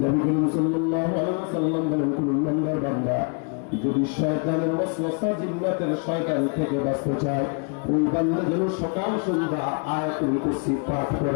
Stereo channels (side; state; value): right; quieter; 37.8 dB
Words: নবী করিম সাল্লাল্লাহু আলাইহি ওয়াসাল্লাম বলেন, কোন ইমানদার বান্দা যদি শয়তানের ওয়াসওয়াসা, জিন্নাতের শয়তান থেকে বাঁচতে চায়, ওই বান্দা যেন সকাল সন্ধ্যা আয়াতুল কুরসি পাঠ করে।